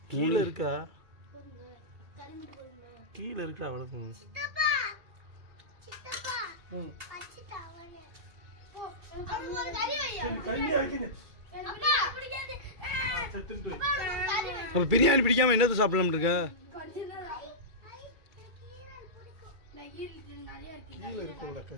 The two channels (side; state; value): left; late; 2.4 ms